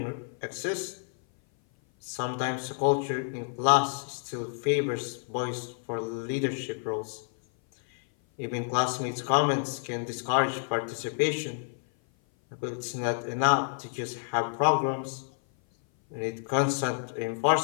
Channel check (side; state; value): right; silent; 56 dB below the other